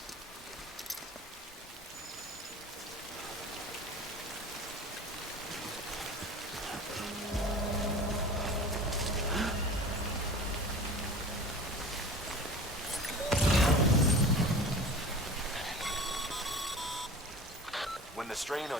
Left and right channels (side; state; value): both; normal; correlation 0.37